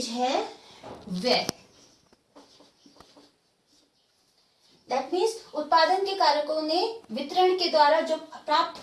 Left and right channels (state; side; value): identical; both; correlation 1.00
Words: है व्यय। दैट मीन्स उत्पादन के कारकों ने वितरण के द्वारा जो